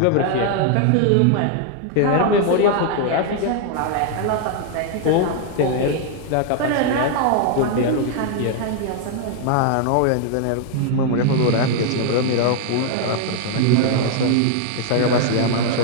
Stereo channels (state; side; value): different; both; correlation 0.00